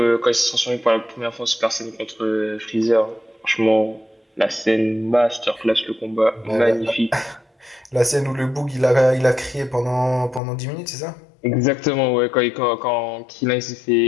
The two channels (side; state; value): right; drops out; at 10.4 s